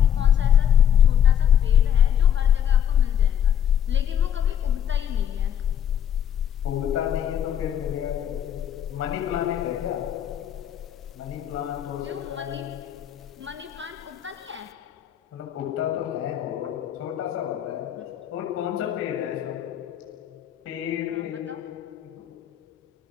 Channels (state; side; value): quieter; right; 9.6 dB